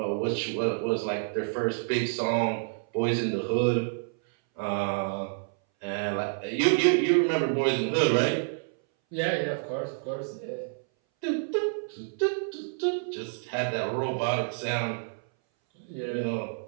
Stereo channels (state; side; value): silent; left; 59 dB below the other